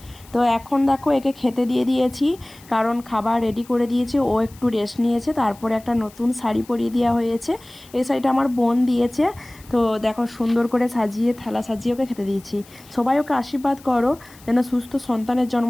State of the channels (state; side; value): noise; left; hiss, 24 dB below the sound